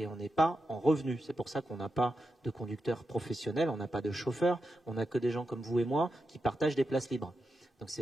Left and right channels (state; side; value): normal; both; correlation 0.88